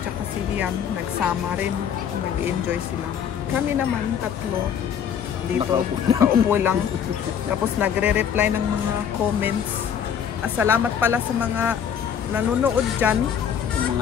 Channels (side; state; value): right; quieter; 8.2 dB